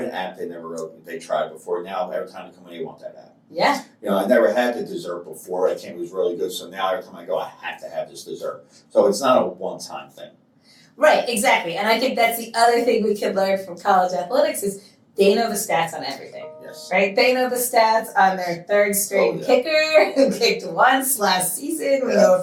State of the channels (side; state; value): both; identical; correlation 1.00